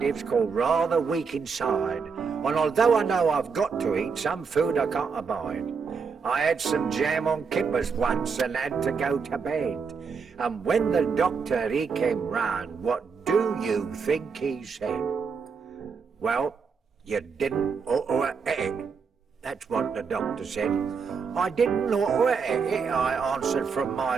call rather weak inside, and although I know I've got to eat some food I can't abide, I had some jam on kippers once and had to go to bed. And when the doctor, he came round, what do you think he said? Well, you didn't ought to eat it. That's what the doctor said. I didn't ought to eat it, I answered from my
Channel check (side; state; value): left; quieter; 5.5 dB